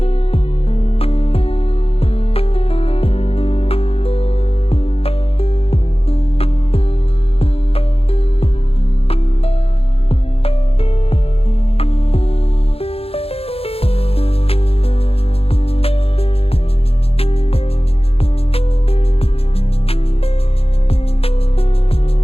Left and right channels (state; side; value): late; right; 0.28 ms